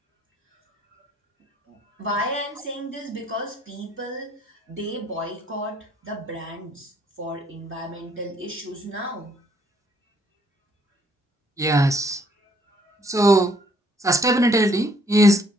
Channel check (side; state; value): both; normal; correlation 0.65